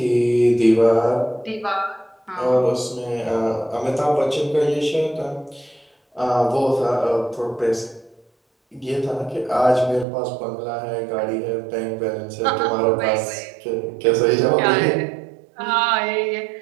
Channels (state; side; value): drops out; left; at 10.1 s